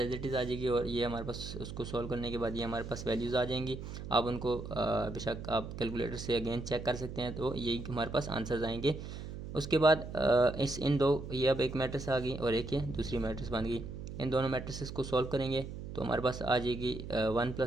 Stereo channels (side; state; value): right; noise; hum, 9 dB below the sound